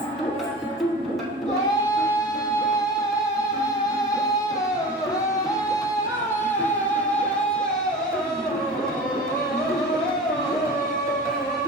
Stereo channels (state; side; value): normal; both; correlation 0.35